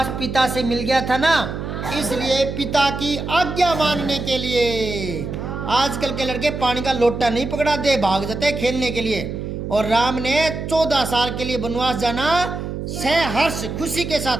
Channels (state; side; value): noise; right; hum, 6 dB below the sound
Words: पिता से मिल गया था ना, इसलिए पिता की आज्ञा मानने के लिए आजकल के लड़के पानी का लोटा नहीं पकड़ा दे, भाग जाते खेलने के लिए। और राम ने 14 साल के लिए वनवास जाना सहर्ष खुशी के